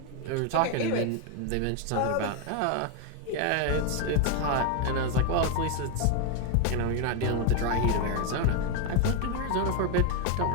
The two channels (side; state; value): both; different; correlation 0.01